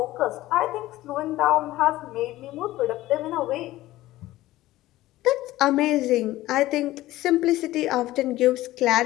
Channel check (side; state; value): right; quieter; 16.3 dB